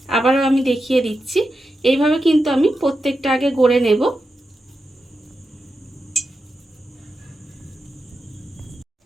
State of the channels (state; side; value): normal; both; correlation 0.89